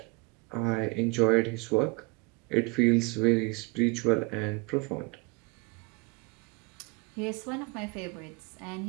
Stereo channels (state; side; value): quieter; left; 27.6 dB